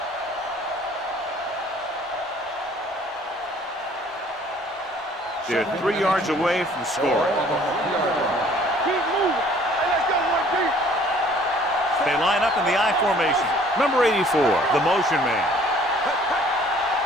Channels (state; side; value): normal; both; correlation 0.56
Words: They're 3 yards away from scoring. Keep moving. Hey, let's go one deep. They line up in the I formation. Number 84, the motion man.